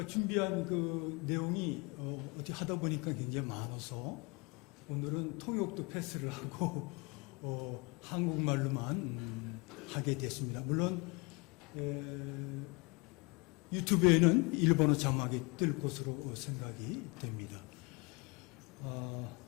준비한 그 내용이 어떻게 하다 보니까 굉장히 많아서 오늘은 통역도 패스를 하고 한국말로만 하게 됐습니다. 물론 유튜브에는 일본어 자막이 뜰 것으로 생각이 됩니다.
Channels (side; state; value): right; quieter; 28.8 dB